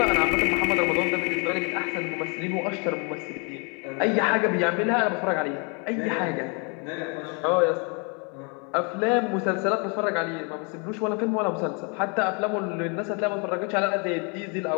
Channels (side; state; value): right; quieter; 34.2 dB